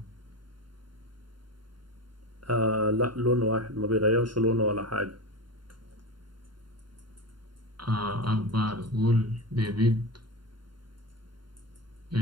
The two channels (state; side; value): late; left; 0.72 ms